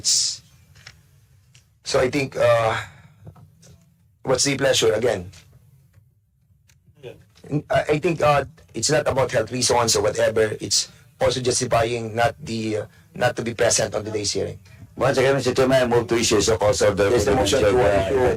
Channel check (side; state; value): both; identical; correlation 1.00